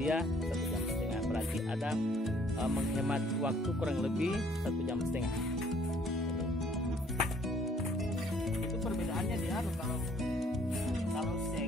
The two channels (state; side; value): normal; both; correlation 0.61